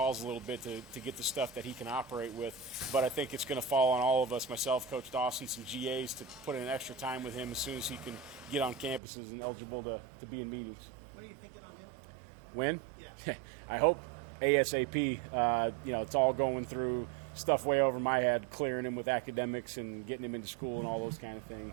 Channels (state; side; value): drops out; left; at 9.0 s